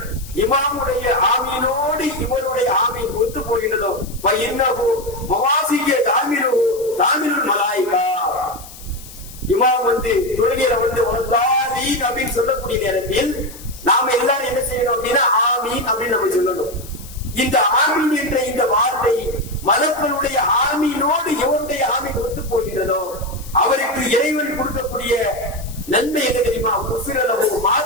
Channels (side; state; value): left; noise; hiss, 17 dB below the sound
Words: இமாமுடைய ஆமீனோடு இவருடைய ஆமீன் ஒத்து போகின்றதோ இன்னஹு மவாசிய தாமிருல் மலாயிகா, இமாம் வந்து தொழுகையில வந்து வலதாலீன் அப்படின்னு சொல்லக்கூடிய நேரத்தில் நாம எல்லாரும் என்ன செய்யணும் அப்படின்னா ஆமீன் அப்படின்னு நம்ம சொல்லணும். இந்த ஆமீன் என்ற இந்த வார்த்தை மலக்களுடைய ஆமீனோடு எவருடைய ஆமீன் ஒத்து போகிறதோ அவருக்கு இறைவன் கொடுக்கக்கூடிய நன்மை என்ன தெரியுமா? குஃபிரலஹு